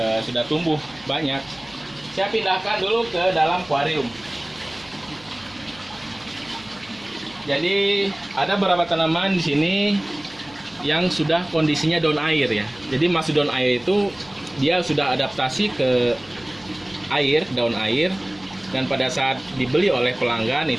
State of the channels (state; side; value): noise; right; hum, 25 dB below the sound